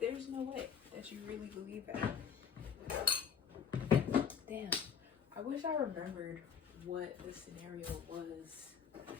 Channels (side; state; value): right; quieter; 7.2 dB